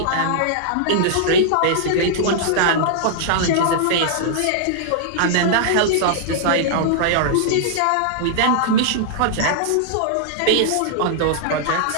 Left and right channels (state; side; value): different; both; correlation -0.01